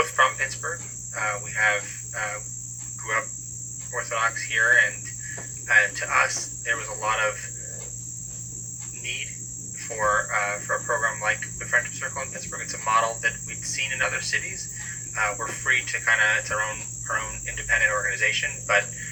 from Pittsburgh. We grew up Orthodox here, and to us, there was a lot of need for a program like the Friendship Circle in Pittsburgh. It's a model that we'd seen in other cities. We're free to it's our own independent organization, but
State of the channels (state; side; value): identical; both; correlation 1.00